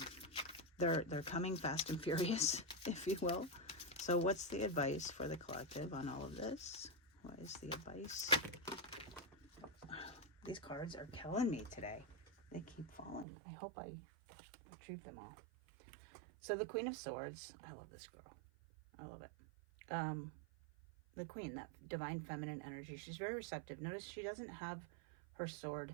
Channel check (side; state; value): left; drops out; at 13.2 s